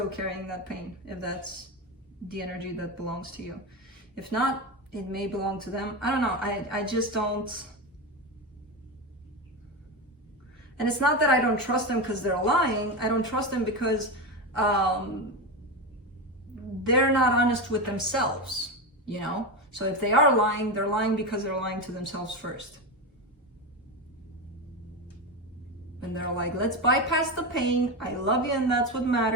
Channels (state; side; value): normal; both; correlation 0.17